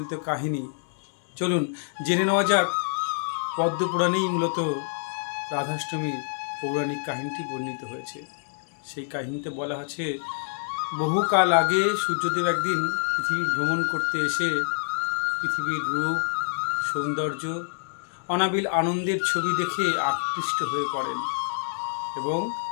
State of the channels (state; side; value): silent; right; 60 dB below the other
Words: কাহিনী। চলুন জেনে নেওয়া যাক। পদ্মপুরাণেই মূলত রাধাষ্টমীর পৌরাণিক কাহিনীটি বর্ণিত হয়েছে। সেই কাহিনীতে বলা আছে, বহুকাল আগে সূর্যদেব একদিন পৃথিবী ভ্রমণ করতে এসে পৃথিবীর রূপ, সৌন্দর্য, অনাবিল আনন্দের ছবি দেখে আকৃষ্ট হয়ে পড়েন এবং